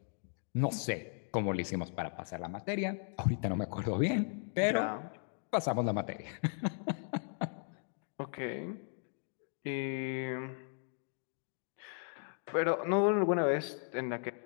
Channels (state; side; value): silent; right; 53 dB below the other